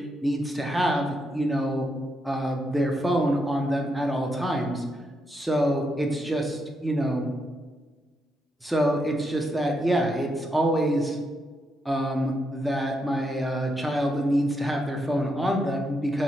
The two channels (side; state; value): both; normal; correlation 0.81